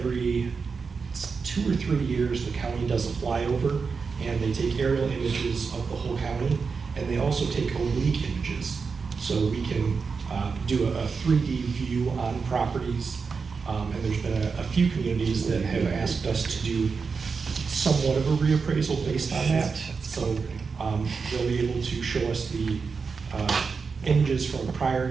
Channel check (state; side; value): quieter; left; 5.1 dB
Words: 2 or 3 years, the county does a flyover, and they take aerial images of the whole county, and they also take oblique images. So we can do a 3D view on properties, and there's been a few communities that have asked us to do somewhat of a reappraisal based on that. So they'll be able to show us the images from the